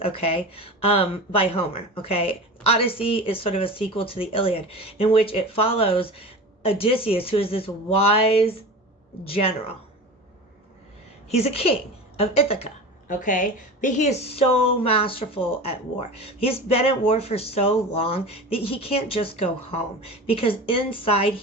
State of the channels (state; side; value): normal; both; correlation 0.32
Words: okay, by Homer, okay? Odyssey is sort of a sequel to the Iliad, in which it follows Odysseus, who is this wise general. He's a king of Ithaca, okay? But he is so masterful at war. He's been at war for so long that he can't just go home, because inside